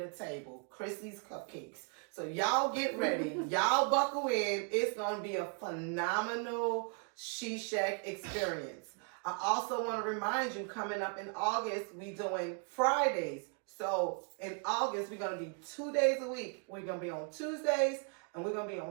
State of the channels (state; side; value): quieter; left; 39.7 dB